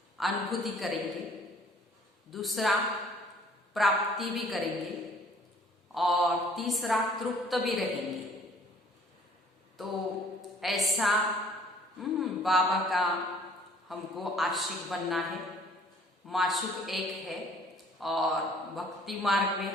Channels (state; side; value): normal; both; correlation 0.55